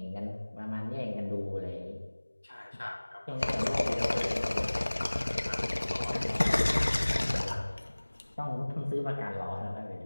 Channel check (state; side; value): inverted; both; correlation -1.00